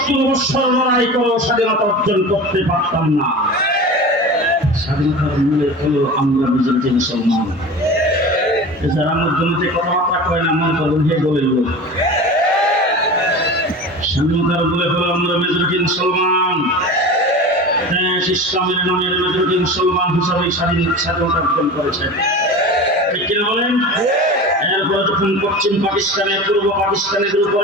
বছর লড়াই করেও স্বাধীনতা অর্জন করতে পারতাম না। স্বাধীনতার মূলে হলো আমরা মেজরিটি মুসলমান। যারা মধ্যে কথাবার্তা কয় না, মন করুন হে বলে স্বাধীনতার বলে হলো আমরা মেজরিটি মুসলমান। দেশ ইসলামের নামের মেজরিটি মুসলমান হিসাবে স্বাধীনতা অর্জন করেছে, ঠিক কিনা বলেন? এরপরে যখন পশ্চিম পাকিস্তানের পূর্ব পাকিস্তানের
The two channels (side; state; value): both; normal; correlation 0.33